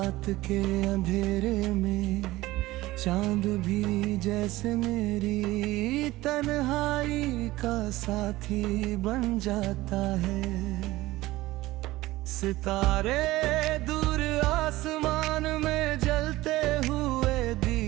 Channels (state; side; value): quieter; left; 18.0 dB